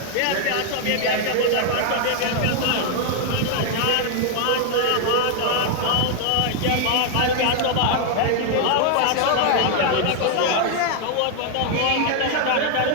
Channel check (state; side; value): different; both; correlation 0.00